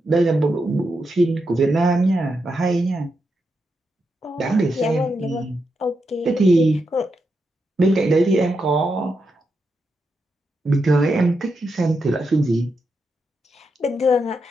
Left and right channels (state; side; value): normal; both; correlation 0.85